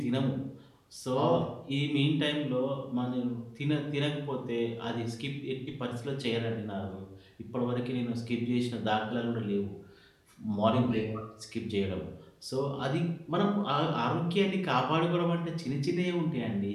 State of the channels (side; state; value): both; identical; correlation 1.00